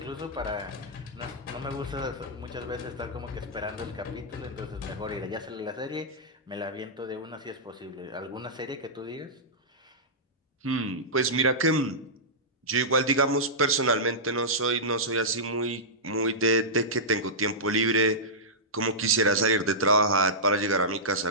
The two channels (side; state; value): both; normal; correlation -0.14